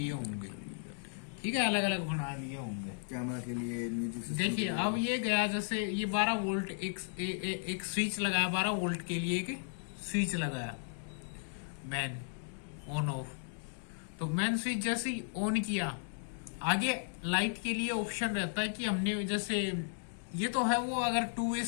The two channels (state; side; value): silent; right; digital silence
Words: होंगे। ठीक है। अलग अलग बना लिए होंगे कैमरा के लिए, म्यूजिक सिस्टम। देखिए अब ये गया, जैसे ये 12 वोल्ट एक स्विच लगाया, 12 वोल्ट के लिए एक स्विच लगाया, मैन ऑन ऑफ। तो मैन स्विच जैसे ही ऑन किया, आगे लाइट के लिए ऑप्शन रहता है कि हमने जैसे ये तो है वो अगर 2 वे